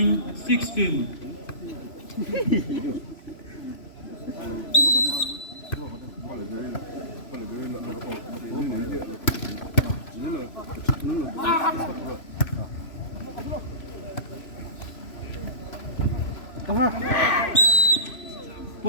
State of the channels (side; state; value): right; late; 3.0 ms